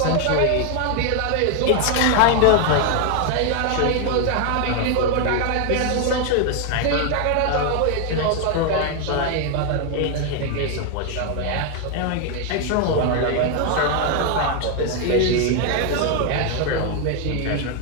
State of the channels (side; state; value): both; different; correlation 0.01